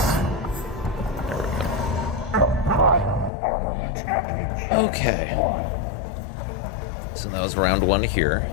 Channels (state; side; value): drops out; right; at 3.3 s